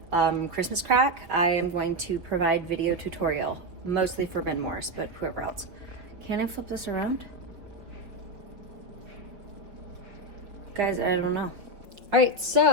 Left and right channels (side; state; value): left; late; 5.4 ms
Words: Christmas crack, I am going to provide video tutorial, mostly for Ben Morris, but whoever else. Can I flip this around? Guys, I don't know. All right,